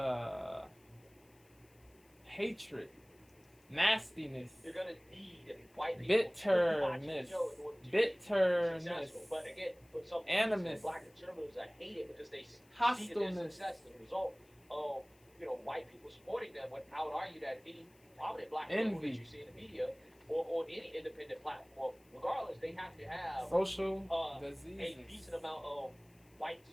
hatred, nastiness, you're gonna need white people bitterness, but again, for some animus, reason, black conservatives are hated because they see hostileness, that their success as a result of white people supporting them. But I would argue that any prominent black liberal that you see in the media or on any independent platform, regardless, they have to have social a decent amount of white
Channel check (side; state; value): left; noise; hiss, 30 dB below the sound